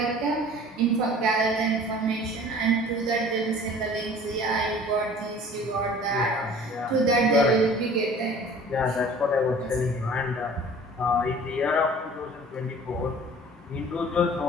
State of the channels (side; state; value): both; normal; correlation 0.47